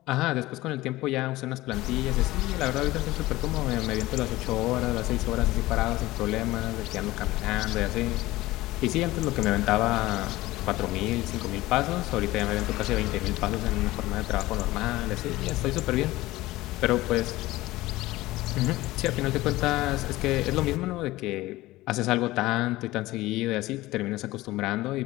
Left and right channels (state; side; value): quieter; right; 18.1 dB